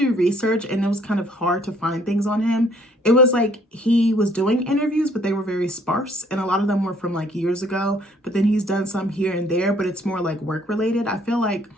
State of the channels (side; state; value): both; normal; correlation 0.62